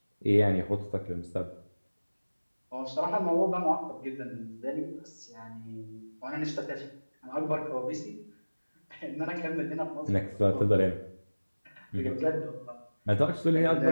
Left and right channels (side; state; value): both; inverted; correlation -1.00